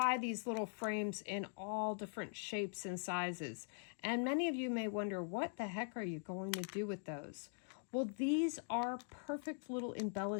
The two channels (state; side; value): silent; right; digital silence